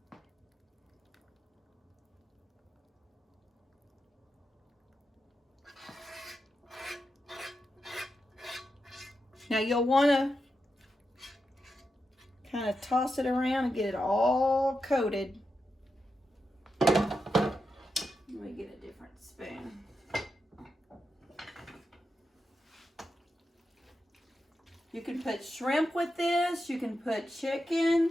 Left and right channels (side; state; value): both; normal; correlation 0.88